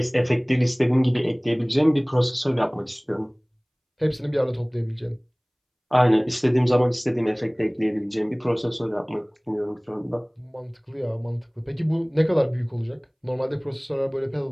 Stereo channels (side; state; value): both; identical; correlation 1.00